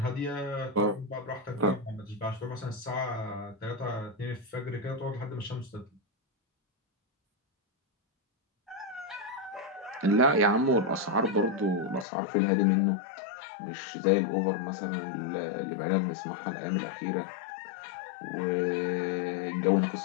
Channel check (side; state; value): right; drops out; at 12.1 s